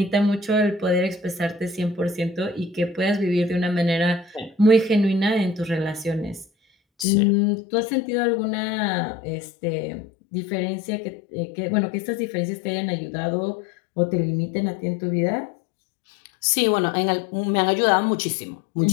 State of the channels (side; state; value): right; drops out; at 7.1 s